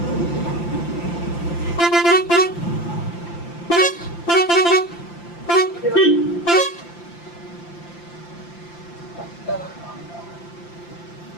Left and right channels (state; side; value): late; right; 5.8 ms